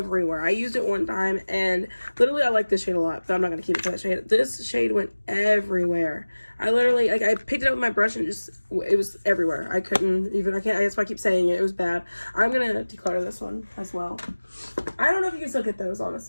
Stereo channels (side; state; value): both; inverted; correlation -1.00